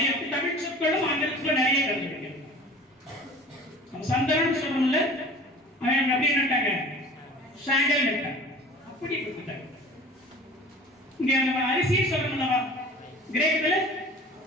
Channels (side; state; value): both; normal; correlation 0.43